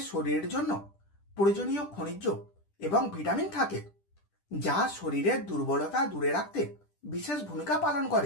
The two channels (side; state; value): right; late; 10 ms